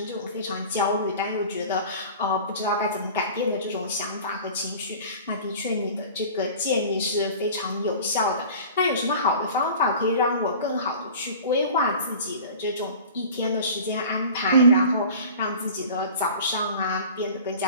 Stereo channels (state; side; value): inverted; both; correlation -0.40